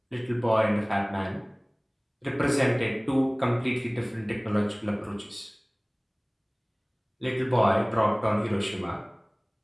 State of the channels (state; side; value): identical; both; correlation 1.00